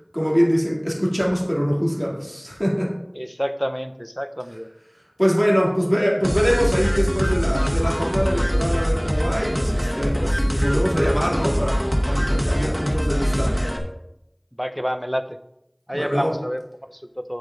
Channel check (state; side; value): identical; both; correlation 1.00